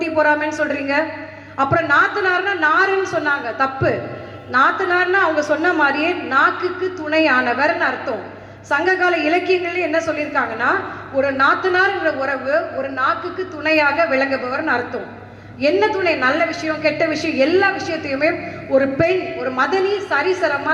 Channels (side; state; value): both; identical; correlation 1.00